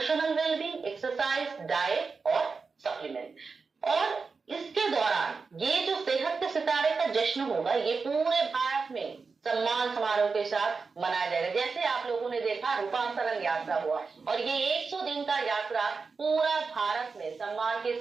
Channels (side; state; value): left; quieter; 4.7 dB